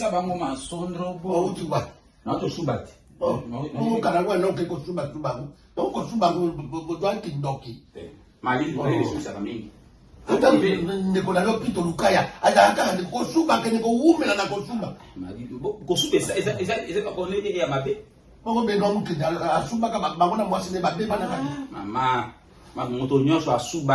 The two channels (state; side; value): identical; both; correlation 1.00